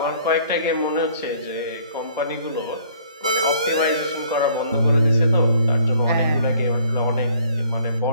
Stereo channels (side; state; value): both; inverted; correlation -0.59